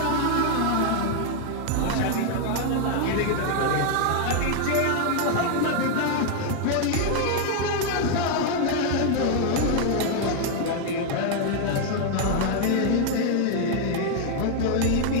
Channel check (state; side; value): different; both; correlation 0.00